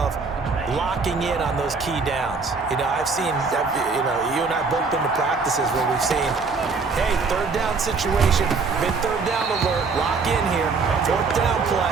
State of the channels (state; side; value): quieter; left; 4.5 dB